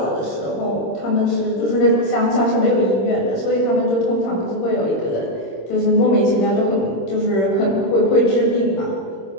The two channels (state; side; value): late; right; 26 ms